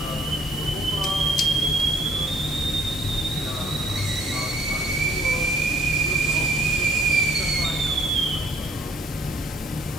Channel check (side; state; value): both; normal; correlation 0.61